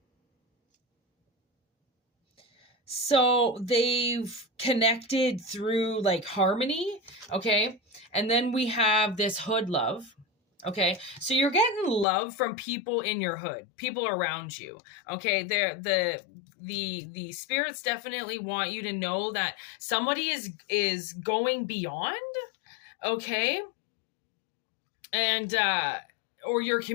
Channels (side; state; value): right; drops out; at 12.1 s